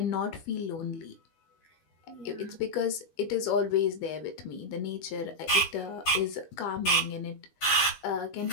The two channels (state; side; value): late; right; 12 ms